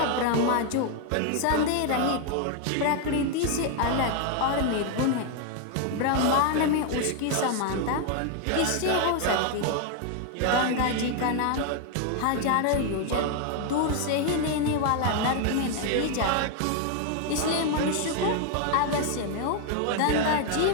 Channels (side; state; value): both; different; correlation 0.00